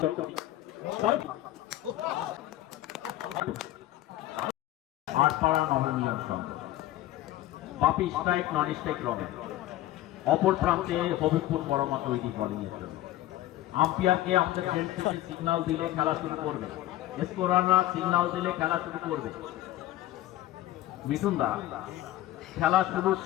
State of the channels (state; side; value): quieter; right; 14.8 dB